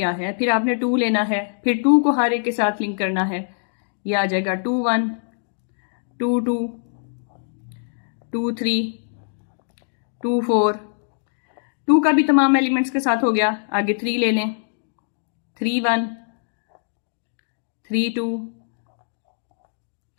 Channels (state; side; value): silent; right; digital silence